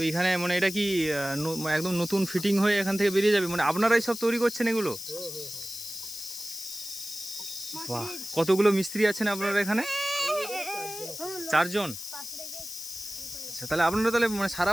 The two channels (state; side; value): noise; left; hiss, 9 dB below the sound